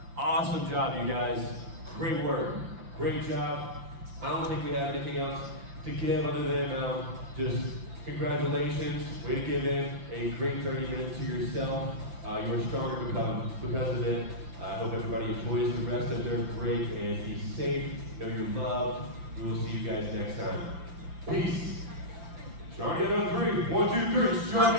Awesome job, you guys. Great work. Great job. I don't think we have anything else to give other than just congratulations. Way to give in a great 30 minutes to yourself. You're stronger because of it. I hope everybody enjoys the rest of their break and be safe. Know you're loved. We will see you guys next time. Peace. Strong together on 3. 1, 2, 3. Strong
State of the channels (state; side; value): late; left; 5.8 ms